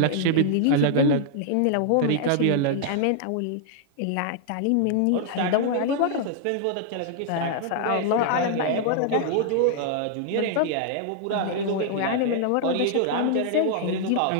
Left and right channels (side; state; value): both; different; correlation -0.01